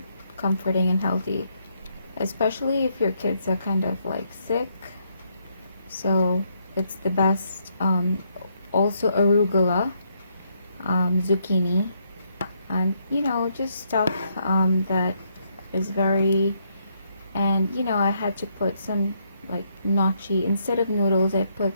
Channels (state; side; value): inverted; both; correlation -0.74